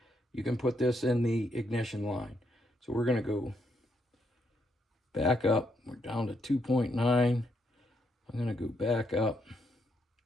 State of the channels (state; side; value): normal; both; correlation 0.76